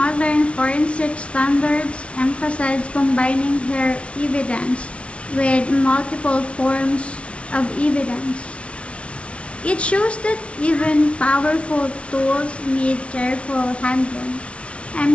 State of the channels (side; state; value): right; late; 0.061 ms